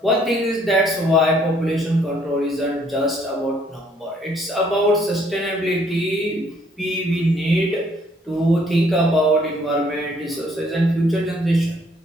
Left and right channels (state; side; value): normal; both; correlation 0.65